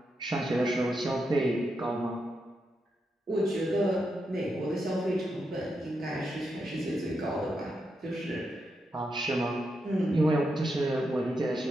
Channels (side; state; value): both; normal; correlation 0.84